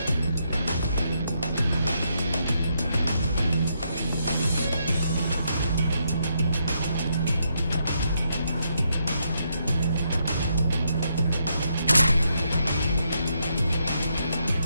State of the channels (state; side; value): inverted; both; correlation -0.78